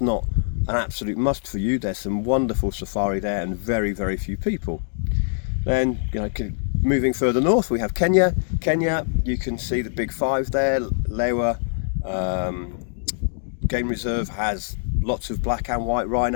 not an absolute must for you, there's some wonderful safari there and very, very few people. Then moving further north, we have Kenya. Kenya, you can see the big five there. Lewa Game Reserve has lots of black and white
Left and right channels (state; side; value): silent; right; digital silence